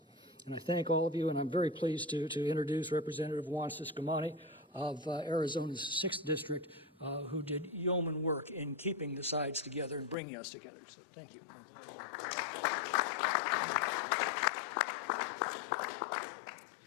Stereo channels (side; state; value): right; drops out; at 10.2 s